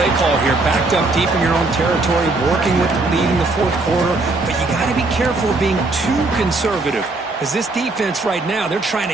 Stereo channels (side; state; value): left; quieter; 3.3 dB